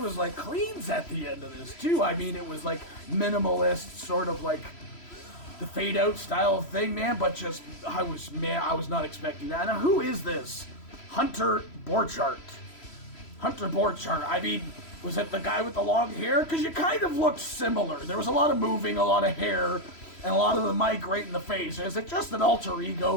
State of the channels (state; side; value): late; right; 3.0 ms